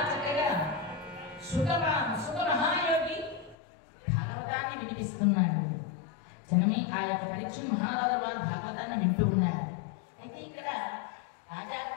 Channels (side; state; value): right; drops out; at 3.6 s